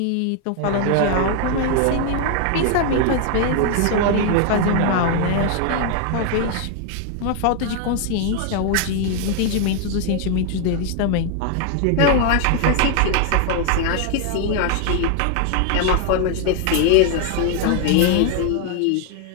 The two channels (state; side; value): different; both; correlation 0.00